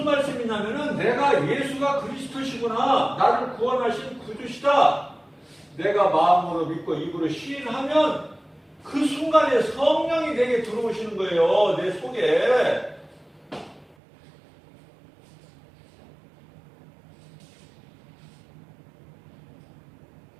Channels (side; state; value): left; drops out; at 14.0 s